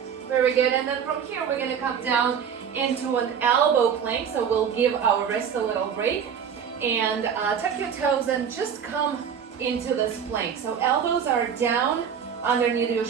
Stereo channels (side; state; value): left; quieter; 7.6 dB